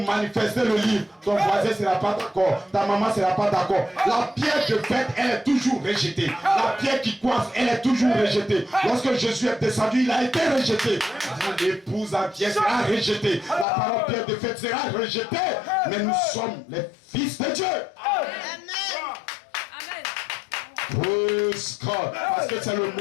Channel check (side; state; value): right; drops out; at 13.7 s